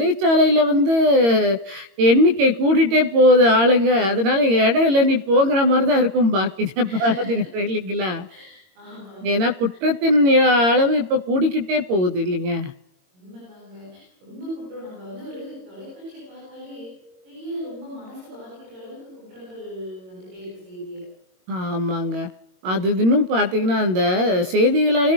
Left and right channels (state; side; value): late; left; 22 ms